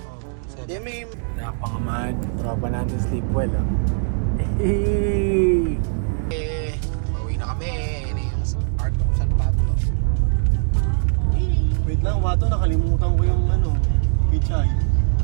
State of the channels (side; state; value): left; silent; 65 dB below the other